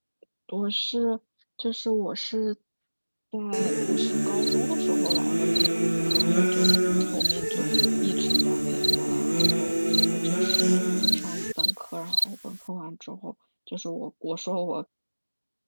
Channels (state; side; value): inverted; both; correlation -1.00